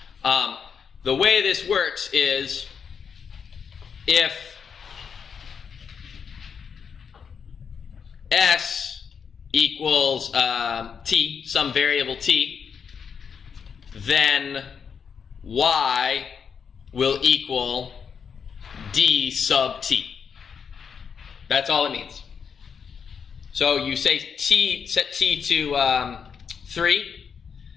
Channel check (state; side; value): quieter; right; 6.6 dB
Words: The way this works is if S equals t, some variable t, then Y will equal D sub t. That's all it means. So you say t, set t to 3.